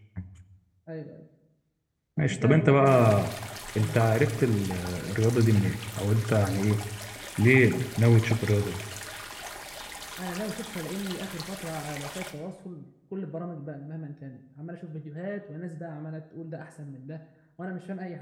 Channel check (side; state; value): both; identical; correlation 1.00